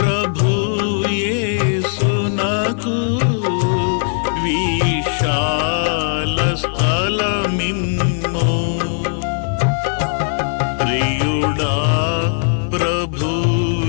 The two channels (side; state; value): right; silent; 55 dB below the other